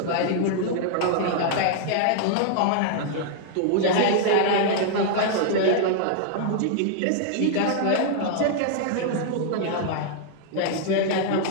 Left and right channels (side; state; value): both; different; correlation 0.00